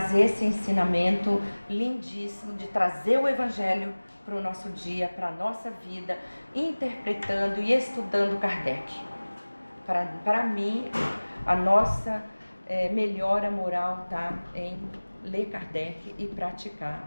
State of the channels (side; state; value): both; inverted; correlation -1.00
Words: esse ensinamento lindíssimo de trazer o Evangelho para o nosso dia, para a nossa vida, interpretando e estudando Kardec. Para mim, a nossa melhora moral está em ler Kardec e praticar